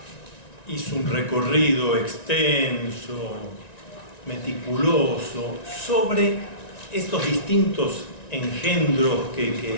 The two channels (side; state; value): right; late; 1.9 ms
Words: hizo un recorrido extenso, meticuloso, sobre estos distintos engendros